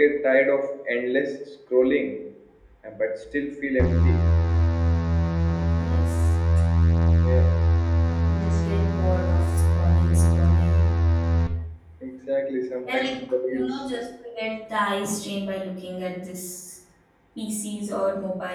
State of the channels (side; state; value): both; identical; correlation 1.00